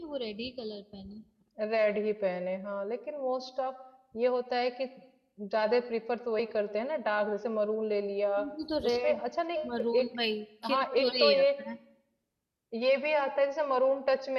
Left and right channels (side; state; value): both; identical; correlation 1.00